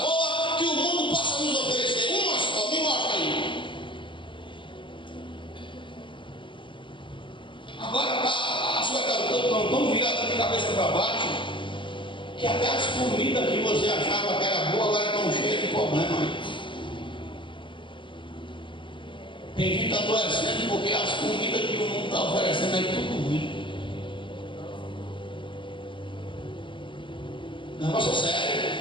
boa que o mundo possa nos oferecer. Uma só, me mostra aí. Agora as coisas estão tão viradas de cabeça para baixo que até as comidas que você achava que era boa agora estão cheias de problema aí. Tem gente adoecendo porque as comidas que o mundo está oferecendo aí tudo ruim. Negócio é sério.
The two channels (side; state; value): right; late; 0.24 ms